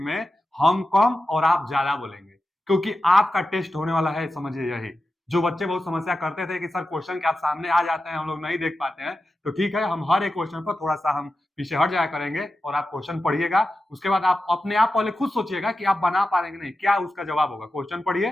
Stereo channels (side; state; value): both; normal; correlation 0.92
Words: हम कम और आप ज़्यादा बोलेंगे, क्योंकि आपका टेस्ट होने वाला है, समझिए यही। जो बच्चे बहुत समस्या करते थे कि सर क्वेश्चन के आप सामने आ जाते हैं, हम लोग नहीं देख पाते हैं, तो ठीक है, हम हर एक क्वेश्चन पर थोड़ा-सा हम पीछे हट जाया करेंगे और आप क्वेश्चन पढ़िएगा। उसके बाद आप अपने आप पहले खुद सोचिएगा कि आप बना पा रहे हैं कि नहीं, क्या उसका जवाब होगा। क्वेश्चन